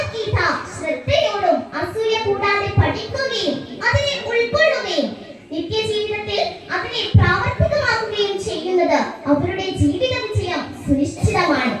ശ്രദ്ധയോടും അസൂയ കൂടാതെ പഠിക്കുകയും അതിനെ ഉൾക്കൊള്ളുകയും നിത്യജീവിതത്തിൽ അതിനെ പ്രാവർത്തികമാക്കുകയും ചെയ്യുന്നത് അവരുടെ ജീവിത വിജയം സുനിശ്ചിതമാണ്.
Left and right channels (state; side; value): identical; both; correlation 1.00